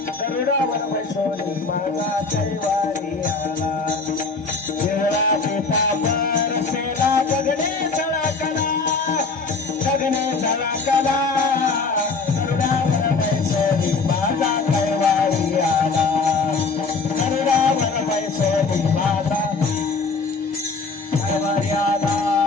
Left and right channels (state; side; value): quieter; right; 4.2 dB